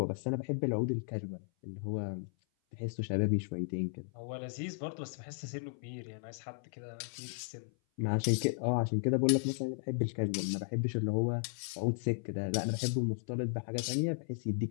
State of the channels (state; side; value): silent; right; 54 dB below the other